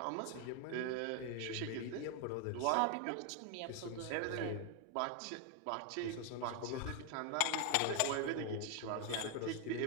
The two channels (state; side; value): different; both; correlation 0.01